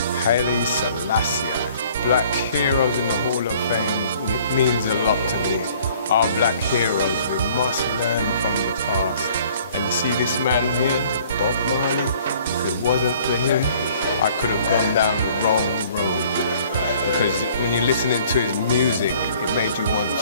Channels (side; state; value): both; inverted; correlation -0.56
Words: Haile Selassie. Black Heroes in the Hall of Fame means a lot to me. Our black heroes, we must learn from the past. And you see this man here, Bob Marley, if it wasn't for him, I could have gone down the wrong road. Because when you're listening to his music, it made you want